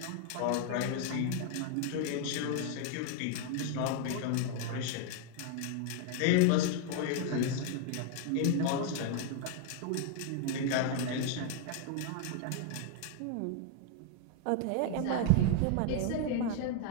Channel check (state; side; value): different; both; correlation 0.00